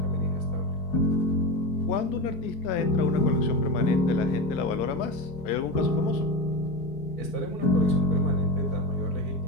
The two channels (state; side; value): late; right; 4.6 ms